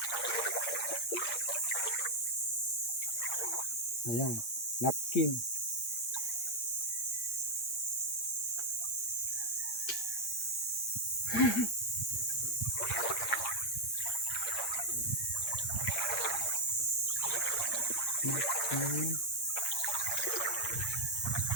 Ayan, napkin. Napkin.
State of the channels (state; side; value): late; right; 8.7 ms